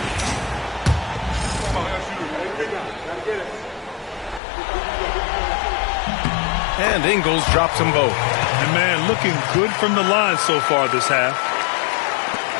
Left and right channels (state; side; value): drops out; right; at 4.4 s